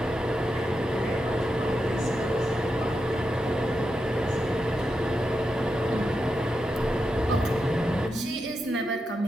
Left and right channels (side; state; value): both; normal; correlation 0.87